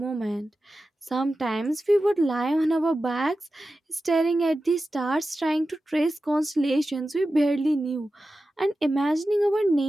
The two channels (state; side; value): normal; both; correlation 0.93